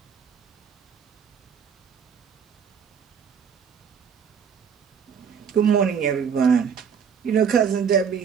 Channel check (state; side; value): quieter; left; 7.1 dB